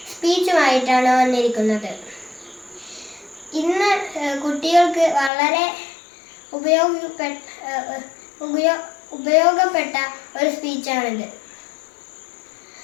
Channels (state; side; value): drops out; right; at 5.3 s